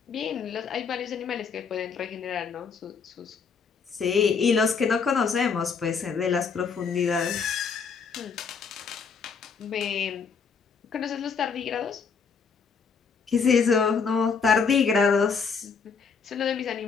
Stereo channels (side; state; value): right; quieter; 5.7 dB